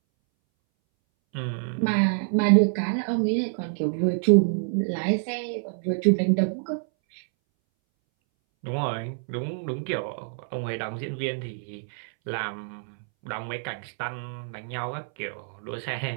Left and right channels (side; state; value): left; silent; 60 dB below the other